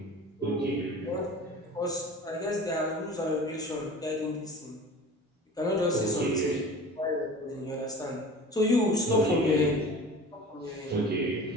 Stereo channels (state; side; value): normal; both; correlation 0.39